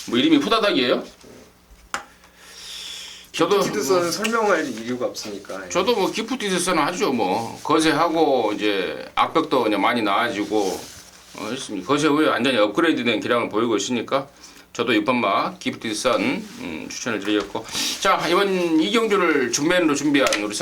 뭐 이름이 후다닥이에요? 기프티드선은 설명할 이유가 없으니까. 저도 뭐 기프티드 선 하죠. 뭐 거세하고 이제 악벽도 그냥 많이 나아지고 했습니다. 거세 후에 완전히 업그레이드된 기량을 보이고 있으니까 저도 6번마 기프티드 선 추천을 드리겠고 자 이번 이경주를 준메인으로 준비한 우리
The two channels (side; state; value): both; identical; correlation 1.00